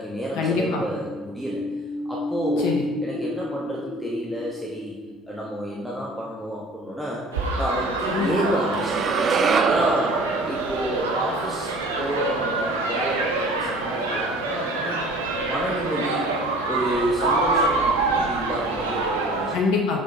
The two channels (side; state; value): both; normal; correlation 0.46